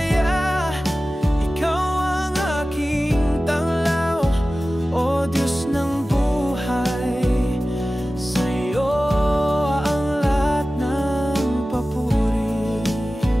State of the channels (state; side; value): normal; both; correlation 0.96